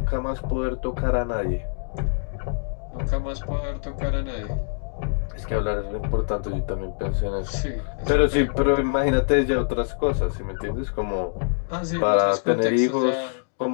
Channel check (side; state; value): right; silent; digital silence